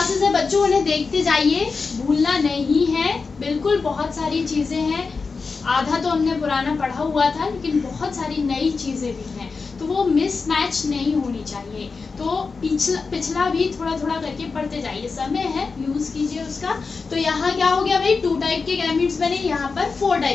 है बच्चों उन्हें देखते जाइए, भूलना नहीं है बिल्कुल। बहुत सारी चीजें हैं, आधा तो हमने पुराना पढ़ा हुआ था लेकिन बहुत सारी नई चीजें भी हैं, तो वो मिसमैच नहीं होनी चाहिए। तो पिछला भी थोड़ा थोड़ा करके पढ़ते जाइए, समय है यूज कीजिए उसका। तो यहाँ क्या हो गया भाई, 2 टाइप के गैमीट्स बने, यहाँ पर 4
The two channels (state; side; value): quieter; right; 4.6 dB